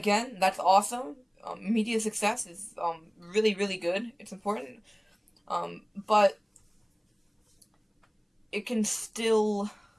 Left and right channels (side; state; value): both; identical; correlation 1.00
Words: that's awesome. Media success is really, really good. It's important. But it can still,